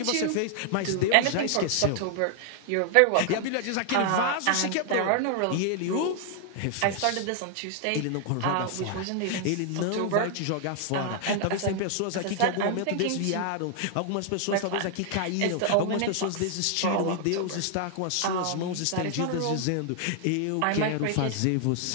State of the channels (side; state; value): both; different; correlation 0.00